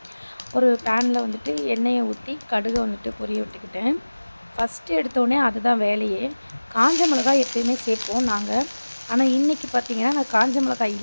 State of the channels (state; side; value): inverted; both; correlation -1.00